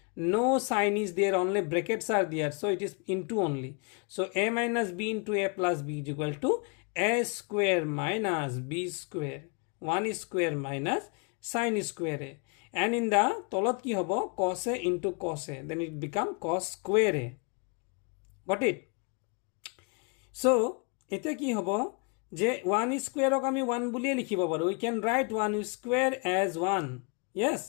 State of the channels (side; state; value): right; quieter; 35.0 dB